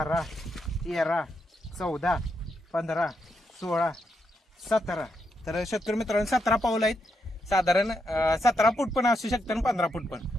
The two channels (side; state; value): both; normal; correlation 0.81